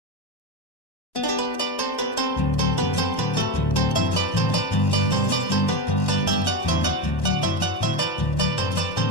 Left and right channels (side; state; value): right; late; 1.1 ms